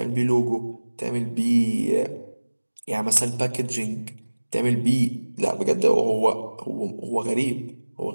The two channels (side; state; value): both; inverted; correlation -1.00